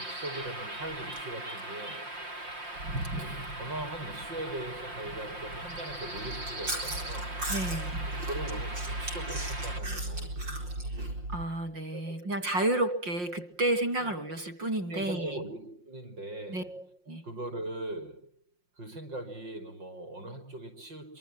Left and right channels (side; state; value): left; late; 5.6 ms